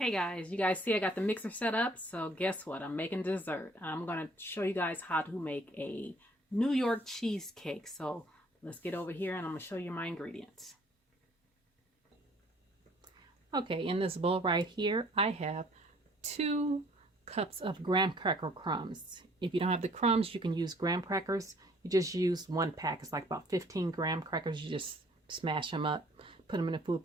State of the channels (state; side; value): normal; both; correlation 0.59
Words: guys, you guys see I got the mixer set up, so guess what? I'm making dessert. I'm going to show you guys how to make a New York cheesecake. So let's get over here and I'm going to show you my ingredients. Okay, in this bowl right here, I have 2 cups of graham cracker crumbs. If you don't have the crumbs, you can use graham crackers. You just use 1 pack. It's like about 15 graham crackers. You just smash them up, put them in a food